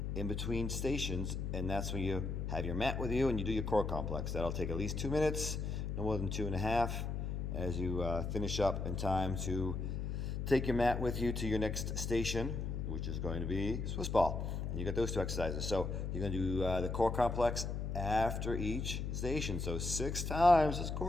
in between stations, and that's when you have your mat with you and you do your core complex. That'll take at least 2 minutes, no more than 2.5, as you finish up in time to take your mat with you to your next station, which is going to be Swiss ball. And you got those 2 exercises. So you're gonna do the core complex after each station. So 6 times this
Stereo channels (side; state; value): left; noise; hum, 2 dB below the sound